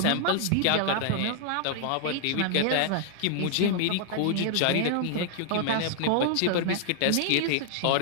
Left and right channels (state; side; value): different; both; correlation 0.00